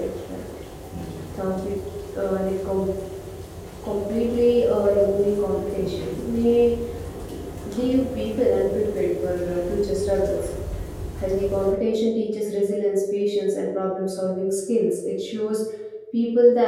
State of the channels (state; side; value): identical; both; correlation 1.00